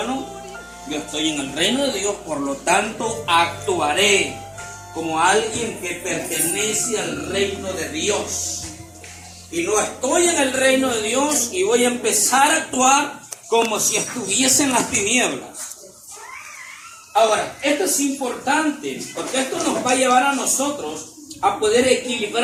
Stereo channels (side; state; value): both; identical; correlation 1.00